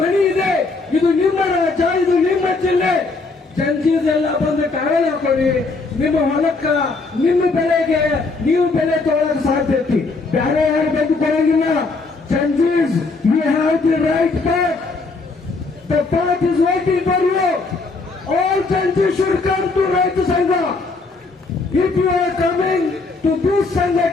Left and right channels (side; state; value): right; quieter; 3.8 dB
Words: ಮನೆ ಇದೆ, ಇದು ನಿಮ್ಮ ರಾಜ್ಯ, ಇದು ನಿಮ್ಮ ಜಿಲ್ಲೆ. ಜಂಜೀದೆಲ್ಲ ಬಂದು ಟಾವೆಲ್ ಹಾಕೊಳ್ಳಿ. ನಿಮ್ಮ ಹೊಲಕ್ಕ, ನಿಮ್ಮ ಬೆಳೆಗೆ ನೀವು ಬೆಲೆ ತೊಗೊಳಕ್ ಸಾಧ್ಯತೆ. ಬೇರೆ ಯಾರು ಬಂದು ಕೊಡಂಗಿಲ್ಲ. ಜಂಜೀಸ್, you have the right path. The path is waiting for you. All ಜಂಜೀಸ್ ಶುಡ್ ಕಮ್ ಟು ರೈತ ಸಂಘ. If you are coming to this